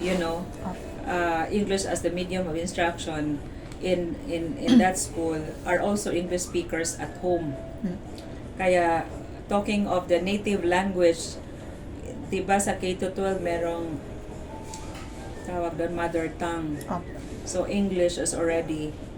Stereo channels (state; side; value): identical; both; correlation 1.00